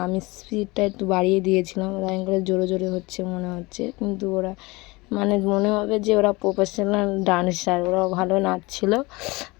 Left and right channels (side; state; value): right; quieter; 23.3 dB